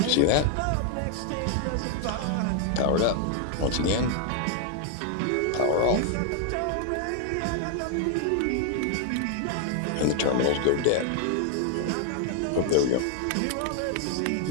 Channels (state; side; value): different; both; correlation 0.00